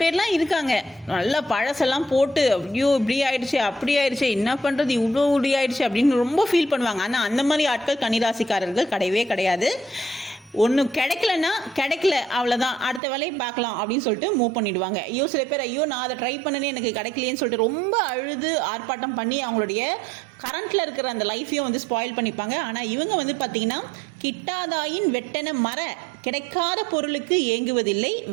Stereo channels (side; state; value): left; drops out; at 13.0 s